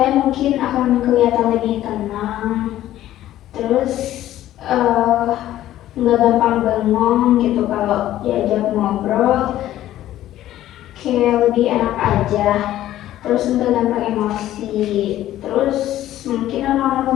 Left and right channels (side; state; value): right; quieter; 13.4 dB